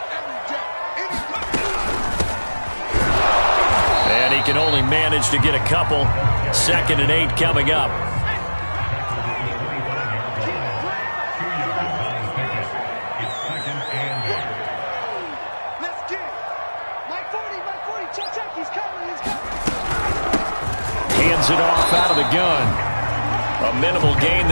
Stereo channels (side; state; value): both; inverted; correlation -1.00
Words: Can only manage to get a couple. 2nd and 8 coming up. Hands it off out of the gun. A minimal gain